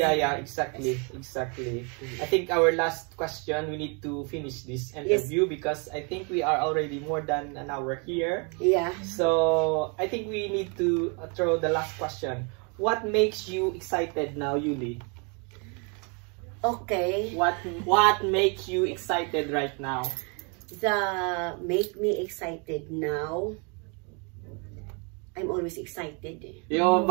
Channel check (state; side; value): quieter; left; 34.7 dB